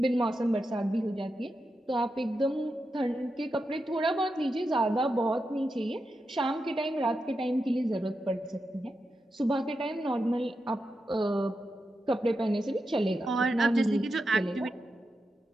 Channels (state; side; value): normal; both; correlation 0.88